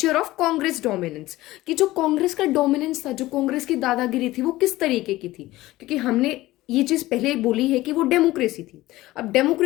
ऑफ कांग्रेस डोमिनेंस, कि जो कांग्रेस का डोमिनेंस था, जो कांग्रेस की दादागिरी थी, वो किस तरीके की थी। क्योंकि हमने ये चीज पहले बोली है कि वो डेमोक्रेसी थी। अब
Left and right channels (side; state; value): right; quieter; 17.4 dB